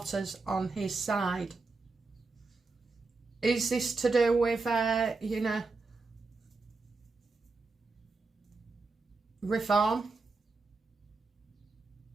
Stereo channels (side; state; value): left; quieter; 3.9 dB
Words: on his side. Is this to do with, you know, reform?